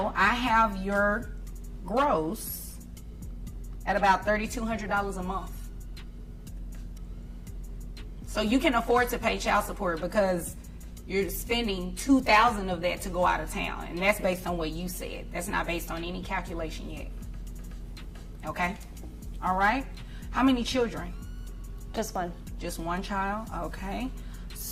I have your gross at about $3,200 a month. So you can afford to pay child support because you're spending $2,000 of that to go out of town, and that's based on what you said. That's not based on any calculation yet. Okay, all right. How many children? Just one. Just one child. Okay,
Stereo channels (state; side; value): identical; both; correlation 1.00